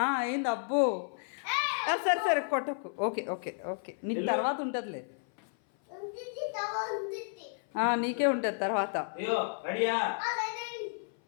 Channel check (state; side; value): silent; right; 55 dB below the other